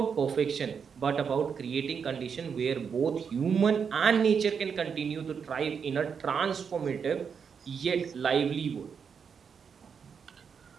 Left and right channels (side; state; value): left; quieter; 6.5 dB